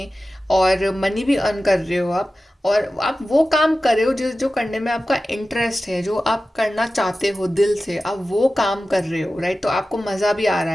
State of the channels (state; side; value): normal; both; correlation 0.95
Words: और मनी भी अर्न कर रहे हो आप, और आप वो काम कर रहे हो जो जो करने में आपका इंटरेस्ट है, जो आप करना चाहते हो दिल से, आप वो काम कर रहे हो, राइट। तो आपको मज़ा भी आ रहा